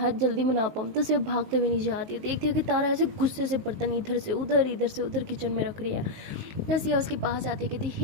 जल्दी मना पाऊँ। तो सिया भागते हुए नहीं जाती है, देखती है कि तारा ऐसे गुस्से से बर्तन इधर से उधर किचन में रख रही है। तो सिया उसके पास आती है, कहती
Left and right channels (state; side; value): late; left; 19 ms